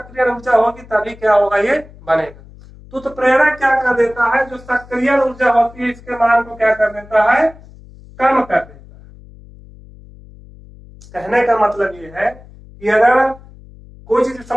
ऊर्जा होगी तभी क्या होगा, ये बनेगा। तो उत्प्रेरक क्या कर देता है, जो सक्रिय ऊर्जा होती है इसके मान को क्या कर देता है, कम कर देता है। कहने का मतलब ये है कि अगर कोई चीज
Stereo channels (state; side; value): noise; left; hum, 21 dB below the sound